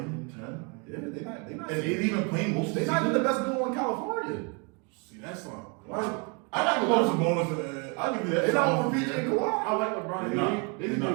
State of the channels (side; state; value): left; quieter; 33.2 dB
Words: 10. Yeah, they not. And they even playing most of the They not even season. the best duo in California. See, that's not. I got to love some bonus. I give you that. They not over PJ and Kawhi. I like LeBron. They not.